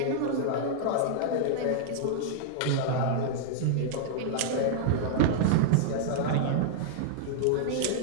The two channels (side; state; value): both; different; correlation -0.01